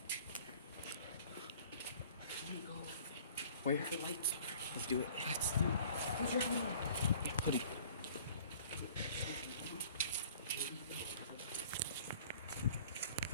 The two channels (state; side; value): inverted; both; correlation -0.51